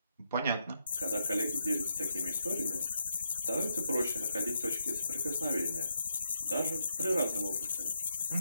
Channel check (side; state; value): both; inverted; correlation -0.81